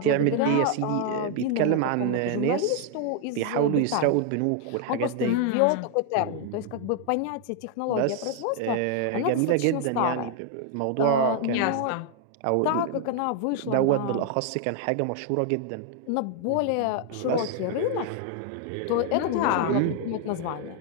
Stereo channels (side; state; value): both; different; correlation 0.00